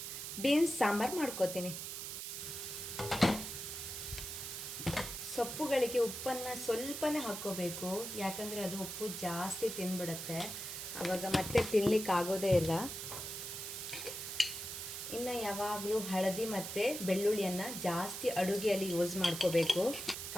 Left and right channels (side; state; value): right; noise; hiss, 6 dB below the sound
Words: ಬೀನ್ಸ್ ಸಾಂಬಾರು ಮಾಡ್ಕೋತೀನಿ. ಸೊಪ್ಪುಗಳಿಗೆ ಉಪ್ಪನ್ನು ಸ್ವಲ್ಪನೇ ಹಾಕ್ಕೋಬೇಕು, ಯಾಕಂದರೆ ಅದು ಉಪ್ಪು ಜಾಸ್ತಿ ತಿಂದ್ಬಿಡುತ್ತೆ, ಆವಾಗ ಮತ್ತೆ ತಿನ್ಲಿಕ್ಕೆ ಆಗೋದೇ ಇಲ್ಲ. ಇನ್ನು ಯಾವಾಗಲೂ ಹಳದಿ ಮತ್ತು ಬೆಳ್ಳುಳ್ಳಿಯನ್ನು ಜಾಸ್ತಿ ಅಡುಗೆಯಲ್ಲಿ ಯೂಸ್ ಮಾಡ್ಕೋಬೇಕು.